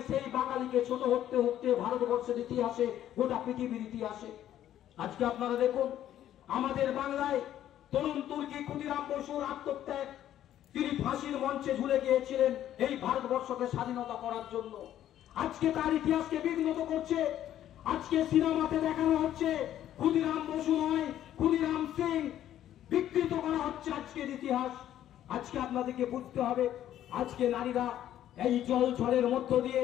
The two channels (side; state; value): right; quieter; 11.7 dB